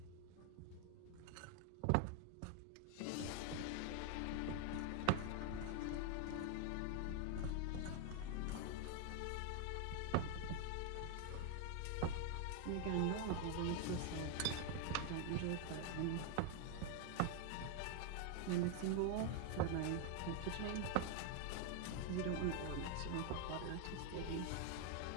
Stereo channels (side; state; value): both; different; correlation 0.00